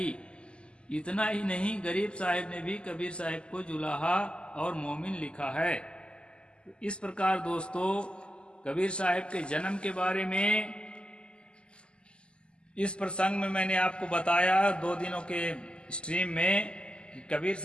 इतना ही नहीं, गरीब साहिब ने भी कबीर साहिब को जुलाहा और मोमिन लिखा है। इस प्रकार दोस्तों कबीर साहिब के जन्म के बारे में इस प्रसंग में मैंने आपको बताया 2 दिनों के स्ट्रीम में कि कबीर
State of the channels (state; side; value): late; right; 0.051 ms